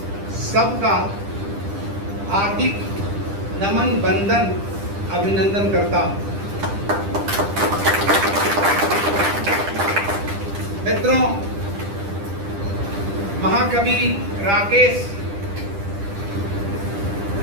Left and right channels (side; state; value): left; late; 10 ms